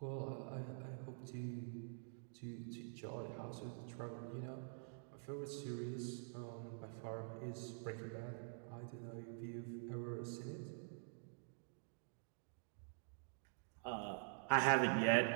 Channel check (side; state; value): left; silent; digital silence